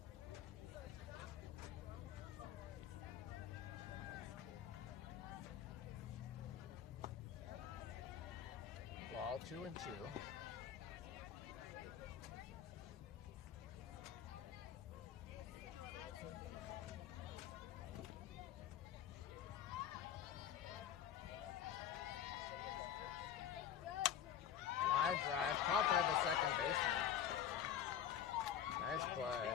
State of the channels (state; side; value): quieter; right; 9.5 dB